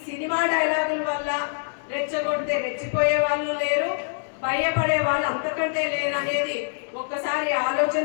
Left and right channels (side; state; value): right; silent; digital silence